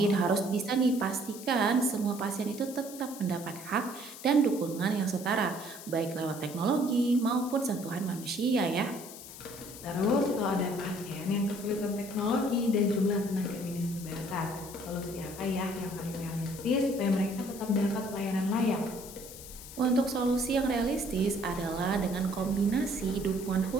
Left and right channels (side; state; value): left; noise; hiss, 14 dB below the sound